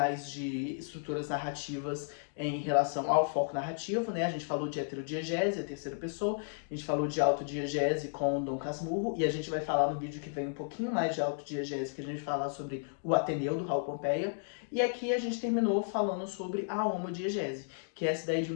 de estruturas narrativas em relação ao foco narrativo, né? A gente falou de heterodiegese, a terceira pessoa, a gente falou de autodiegese com Dom Casmurro, e a gente vai falar no vídeo que vem um pouquinho mais de autodiegese, que a gente vai falar sobre o Ateneu, do Raul Pompeia, e aqui a gente terminou falando sobre a homodiegese, que é essa ideia de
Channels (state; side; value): silent; right; digital silence